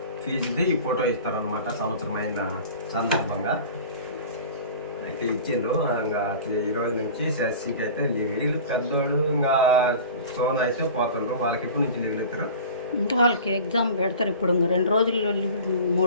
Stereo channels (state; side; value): inverted; both; correlation -0.39